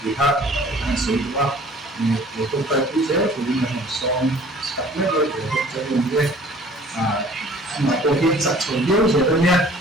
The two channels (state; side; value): normal; both; correlation 0.51